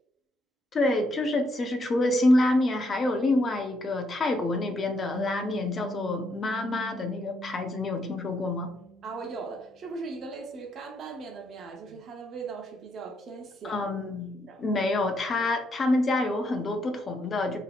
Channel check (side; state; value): both; normal; correlation 0.76